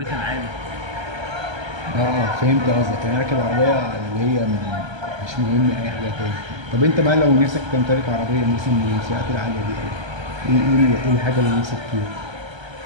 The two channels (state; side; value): late; left; 1.3 ms